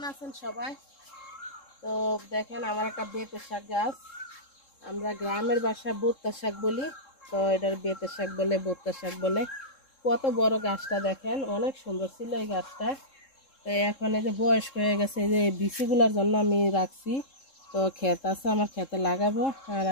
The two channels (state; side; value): late; right; 3.7 ms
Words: আছেন সবাই? তো দেখেন আমার একটা বেতের শাক গাছ, আমরা গ্রামের ভাষায় বোত্তা শাক বলি, তো এটার বেতের শাক বলে, বোত্তা শাক বলে। কত বড় গাছটা দেখেন, অনেক সুন্দর ছিল এই গাছটা। তো এখন এই যে বয়স্ক হয়ে গেছে, এই যে বিচিগুলোর জন্য আমি রাখছি। তো ক্ষেত আছে, আমার ক্ষেতে লাগাবো। আর